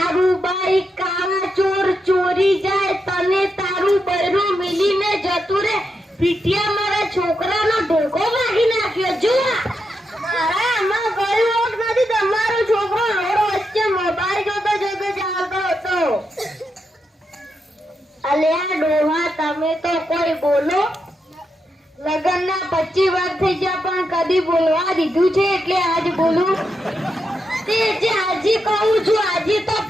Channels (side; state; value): both; normal; correlation 0.85